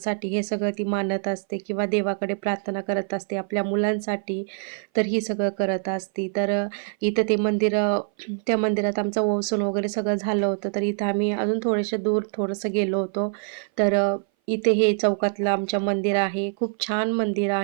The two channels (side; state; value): left; silent; 58 dB below the other